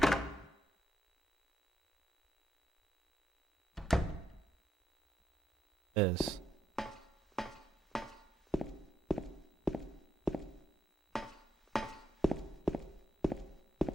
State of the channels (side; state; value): both; normal; correlation 0.80